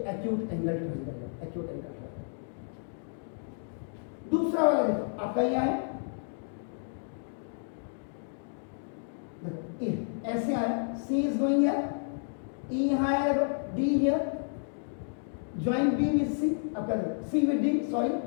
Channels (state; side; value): silent; right; digital silence